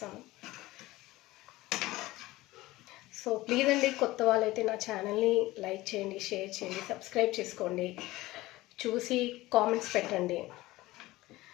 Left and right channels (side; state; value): right; quieter; 18.5 dB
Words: సో ప్లీజ్ అండి, కొత్త వాళ్ళైతే నా ఛానల్ని లైక్ చేయండి, షేర్ చేయండి, సబ్స్క్రైబ్ చేసుకోండి, చూసి కామెంట్స్ పెట్టండి.